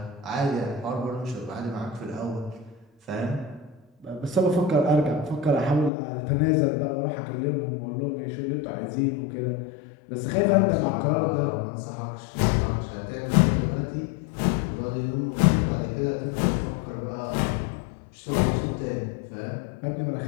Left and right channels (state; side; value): drops out; right; at 5.9 s